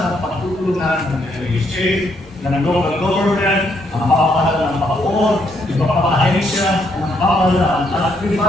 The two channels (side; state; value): both; normal; correlation 0.73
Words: pagtutulungan ng LHA, ng local government, ang pamahalaan ng Bacoor, iba pang ahensya ng pamahalaan at